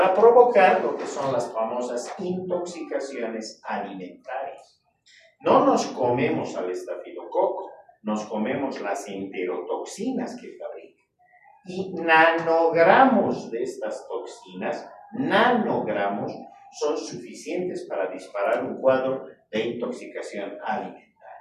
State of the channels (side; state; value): both; identical; correlation 1.00